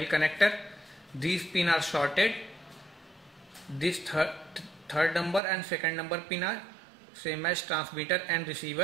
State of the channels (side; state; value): left; drops out; at 5.4 s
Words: connector, these pins are shorted. This third number and second number pin are same as transmitter and